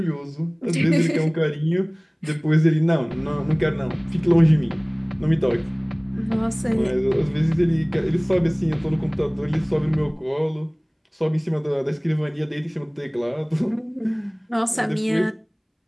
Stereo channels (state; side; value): identical; both; correlation 1.00